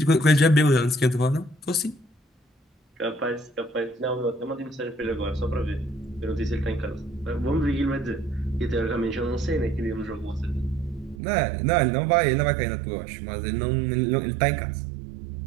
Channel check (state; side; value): drops out; left; at 11.2 s